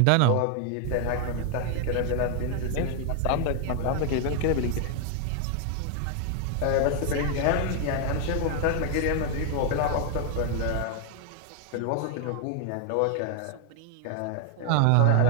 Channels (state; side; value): different; both; correlation 0.00